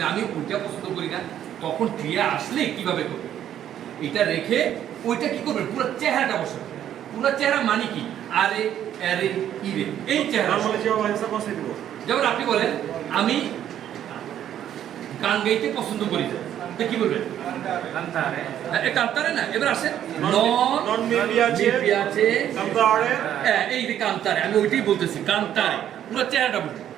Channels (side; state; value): left; quieter; 10.7 dB